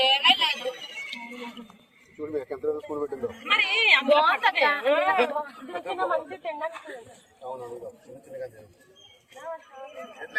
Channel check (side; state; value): both; identical; correlation 1.00